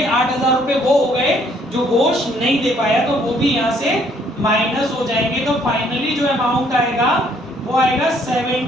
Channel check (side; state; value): both; normal; correlation 0.65